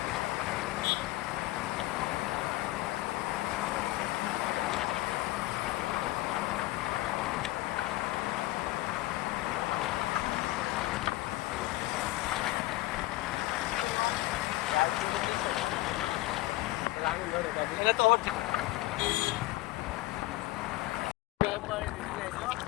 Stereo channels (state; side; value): quieter; right; 18.8 dB